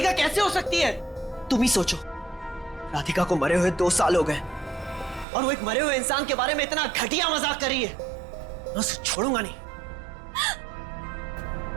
कैसे हो सकती है? तुम ही सोचो, राधिका को मरे हुए 2 साल हो गए और वो एक मरे हुए इंसान के बारे में इतना घटिया मजाक कर रही है। मैं उसे छोड़ूंगा नहीं।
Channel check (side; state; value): left; drops out; at 5.2 s